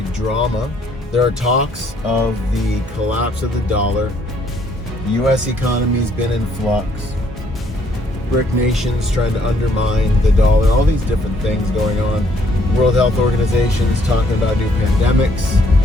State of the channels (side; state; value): both; normal; correlation 0.67